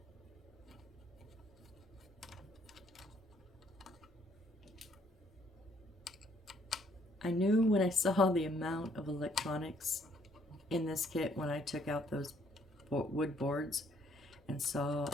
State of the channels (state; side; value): normal; both; correlation 0.66